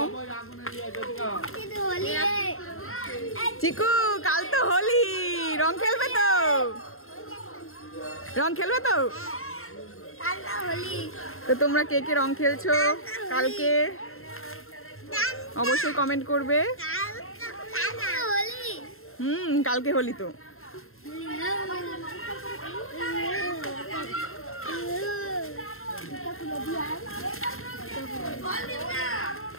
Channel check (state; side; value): late; right; 0.61 ms